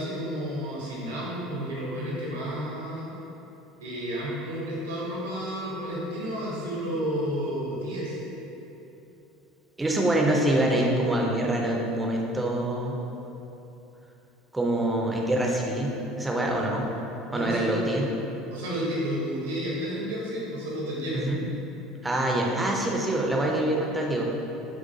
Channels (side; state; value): both; normal; correlation 0.53